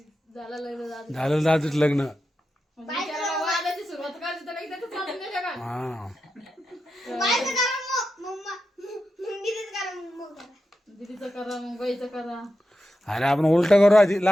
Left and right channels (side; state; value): both; normal; correlation 0.89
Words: झालं लग्न झालं. झालं दादूच लग्न बिचारा वादाची सुरुवात करायची तर काही त्याचं चालून गेलं का? हा दीदीचं करा मग बाईचं करा. अरे आपण उलट करू आधी